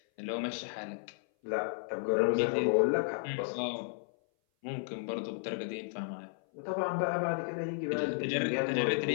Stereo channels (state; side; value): silent; right; 56 dB below the other